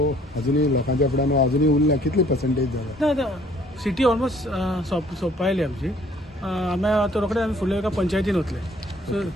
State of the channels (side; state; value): both; normal; correlation 0.59